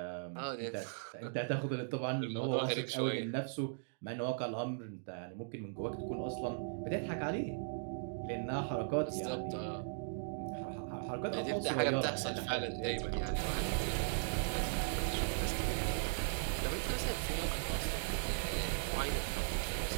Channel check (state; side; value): silent; left; digital silence